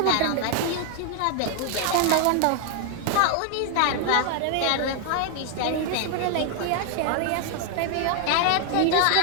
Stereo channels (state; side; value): different; both; correlation 0.00